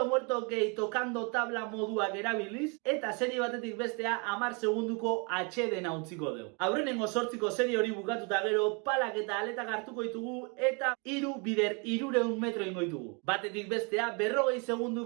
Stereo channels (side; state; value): left; quieter; 33.2 dB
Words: muerto gehi tokando tabla moduak erabiliz, eta serie batetik bestea 10 segunduko atxeden utziko dugu. Aurrenengo 8ko serie hori bukatuta gero, palak eta aletak hartuko ditugu, eta 3 bider 300 metro ingo ditugu. Batetik bestea 40